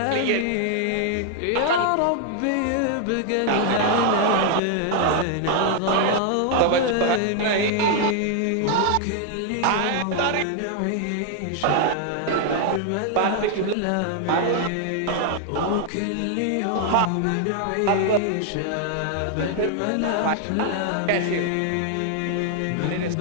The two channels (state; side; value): different; both; correlation 0.00